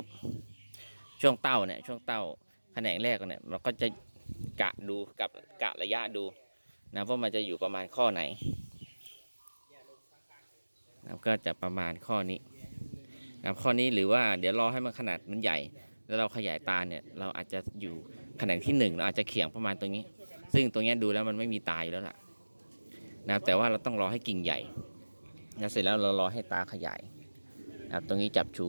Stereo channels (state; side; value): inverted; both; correlation -1.00